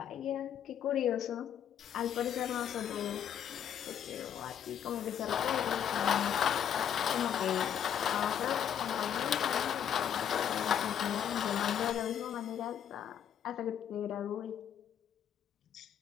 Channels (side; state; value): right; quieter; 9.3 dB